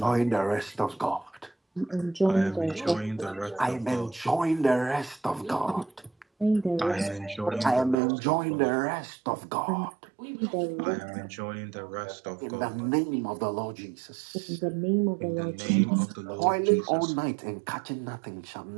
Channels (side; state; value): left; drops out; at 8.0 s